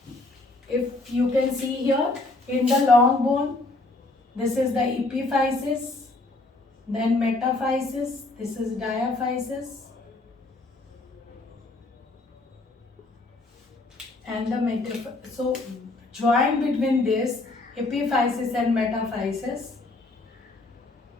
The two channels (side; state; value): right; quieter; 3.1 dB